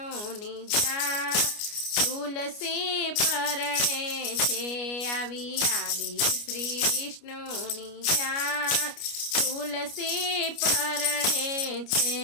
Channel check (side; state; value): right; late; 29 ms